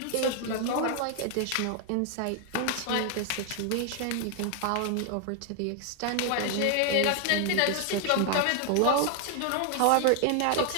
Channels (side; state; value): both; different; correlation 0.00